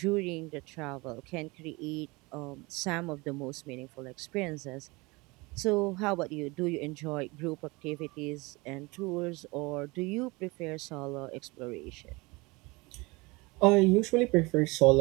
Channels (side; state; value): left; quieter; 24.8 dB